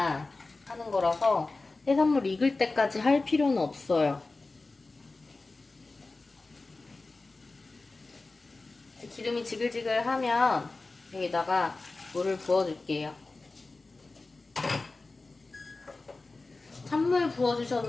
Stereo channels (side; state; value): right; quieter; 3.5 dB